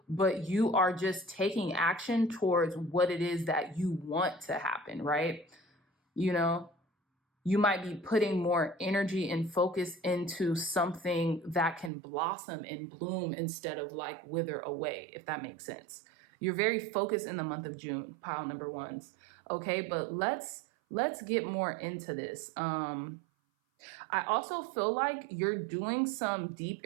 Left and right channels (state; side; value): drops out; left; at 11.9 s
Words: but you are just taking action towards what it is that you want to happen, right? You know, you might be putting more energy and focus into something that can blossom and bloom instead of like wither away, if that makes sense. You're very focused in the month of June, pile number ones. Okay, but let's get more into this. I also feel like you're doing some deep